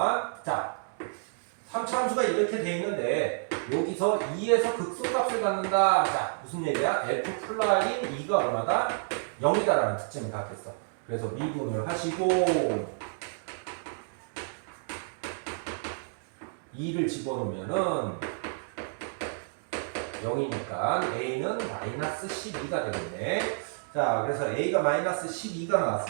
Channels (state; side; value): silent; left; digital silence